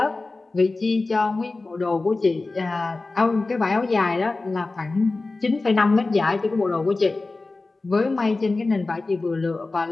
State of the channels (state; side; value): quieter; right; 3.4 dB